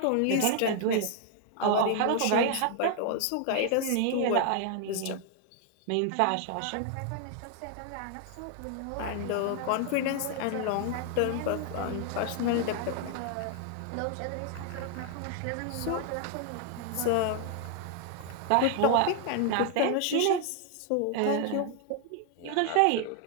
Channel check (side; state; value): both; different; correlation 0.00